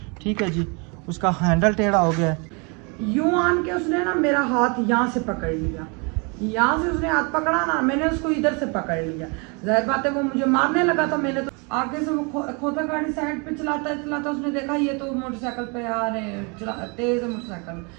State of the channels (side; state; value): left; quieter; 32.4 dB